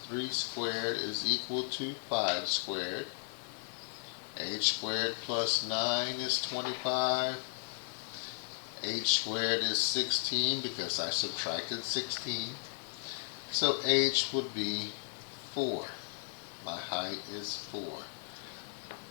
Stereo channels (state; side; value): silent; right; 54 dB below the other